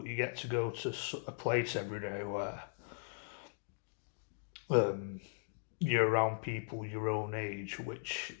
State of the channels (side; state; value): right; silent; digital silence